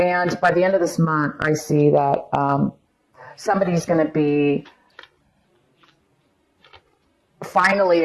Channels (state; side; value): identical; both; correlation 1.00